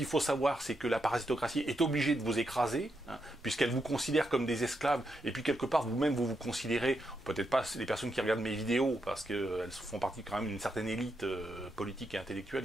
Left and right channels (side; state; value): both; normal; correlation 0.83